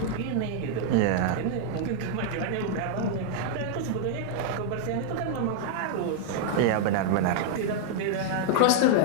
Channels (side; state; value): both; different; correlation -0.01